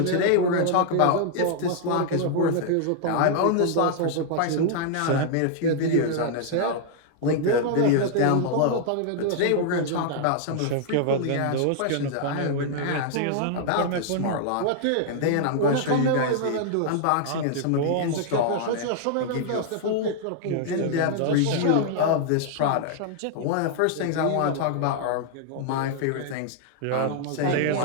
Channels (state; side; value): different; both; correlation -0.01